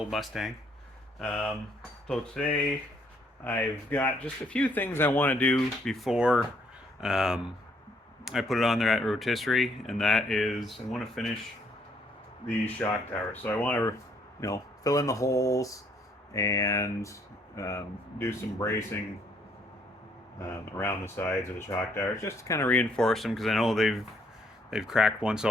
Mustang. So today I've got just a few things I want to do before I put it on there at rotisserie, and that is I want to finish the shock tower. So I want to, fill in the holes and do some bracing around the sides of the shock towers, just to kind of reinforce them, because I know they've cracked once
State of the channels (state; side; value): normal; both; correlation 0.68